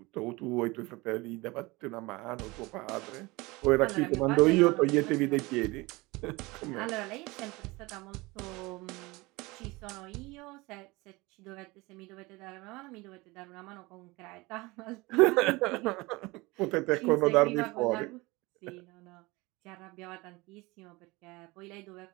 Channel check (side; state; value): left; quieter; 23.1 dB